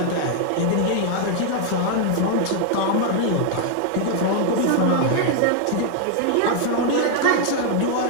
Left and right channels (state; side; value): different; both; correlation 0.00